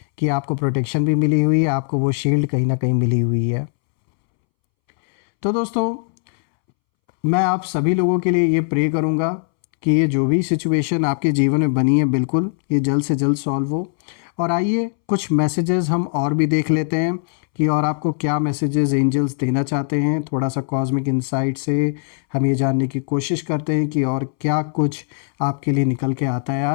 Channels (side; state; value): right; silent; 66 dB below the other